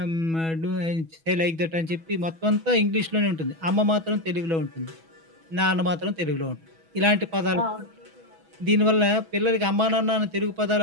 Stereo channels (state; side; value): late; left; 6.1 ms